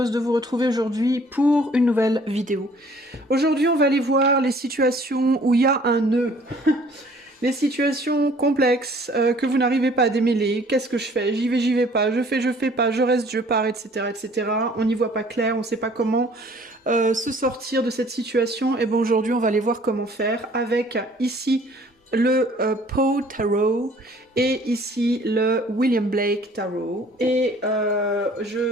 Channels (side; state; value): both; normal; correlation 0.55